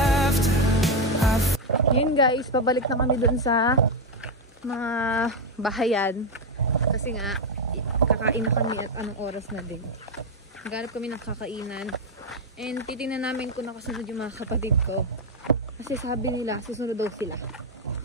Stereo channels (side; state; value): both; normal; correlation 0.06